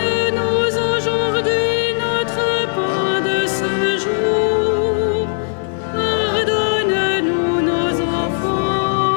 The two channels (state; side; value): silent; right; 67 dB below the other